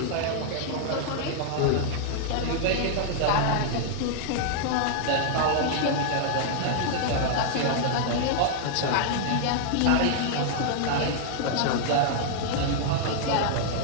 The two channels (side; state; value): both; different; correlation -0.01